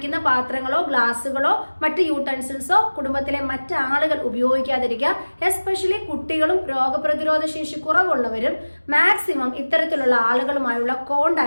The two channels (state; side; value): inverted; both; correlation -1.00